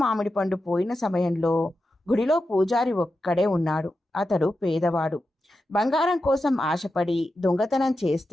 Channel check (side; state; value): both; normal; correlation 0.90